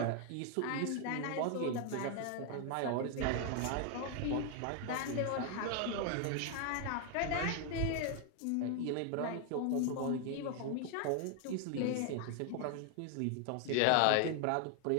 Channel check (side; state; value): both; different; correlation 0.01